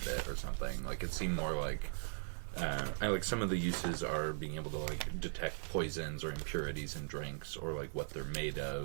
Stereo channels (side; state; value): left; silent; 52 dB below the other